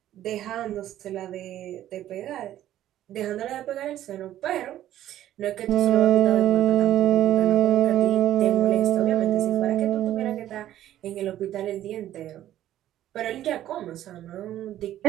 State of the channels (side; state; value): left; quieter; 12.6 dB